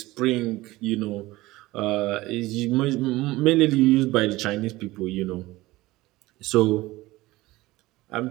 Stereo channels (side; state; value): left; quieter; 18.9 dB